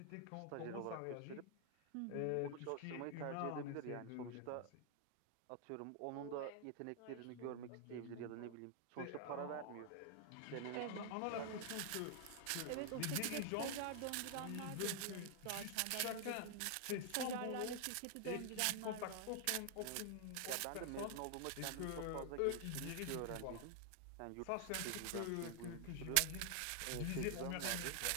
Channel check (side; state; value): both; different; correlation 0.00